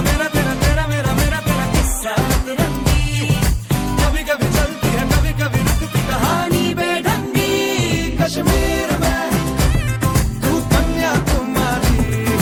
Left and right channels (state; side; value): identical; both; correlation 1.00